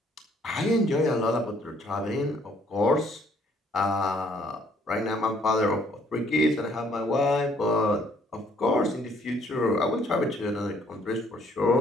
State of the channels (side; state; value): both; normal; correlation 0.64